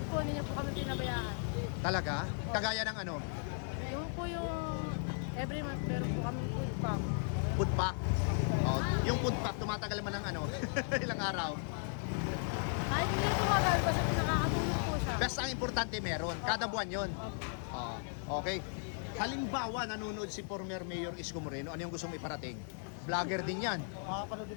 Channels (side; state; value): right; silent; 54 dB below the other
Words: po, hindi niya po kami pinabayaan. Talaga? Kagaya ng ano? Yung po yung every month meron po kami food pack. Food pack. Oh, yung food pack, tumatagal man ng ano? Ilang araw? Ay, hindi tumagal basta nakakatulong po siya. Basta ang importante meron. Kada buwan yon. Oo. Okay. Halimbawa, nanonood si former Mayor Isko Moreno, ano yung gusto mo iparating? Vlogger din yan. Makapanood